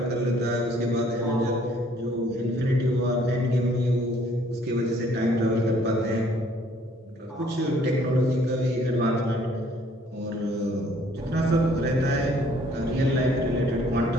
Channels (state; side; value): normal; both; correlation 0.61